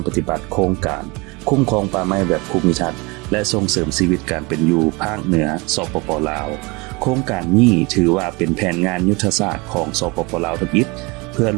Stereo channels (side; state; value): left; quieter; 26.3 dB